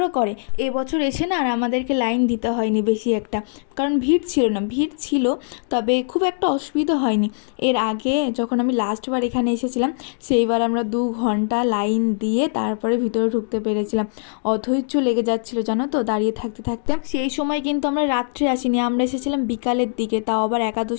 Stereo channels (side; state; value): right; silent; digital silence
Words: করে। এবছর এসে না আর আমাদেরকে লাইন দিতে হয়নি বেশি একটা, কারণ ভিড় ছিল না। ভিড় ছিল, তবে খুব একটা অসুবিধা হয়নি। এর আগে যখন আমি লাস্টবার এখানে এসেছিলাম, সেইবার আমরা 2 ঘন্টা লাইন দিয়ে তারপরে ভিতরে ঢুকতে পেরেছিলাম। অধৈর্য লেগে যাচ্ছিল জানো তো দাঁড়িয়ে থাকতে থাকতে। সেই সময় কিন্তু আমরা রাত্রে আসিনি, আমরা এসেছিলাম বিকালের দিকে, তাও আবার